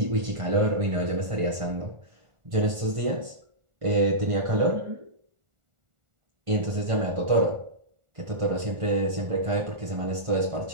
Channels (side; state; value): left; late; 1.4 ms